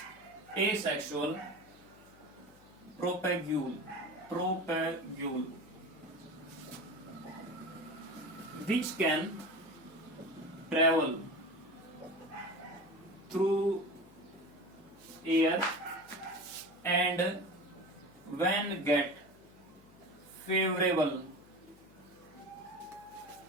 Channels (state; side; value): noise; left; hum, 24 dB below the sound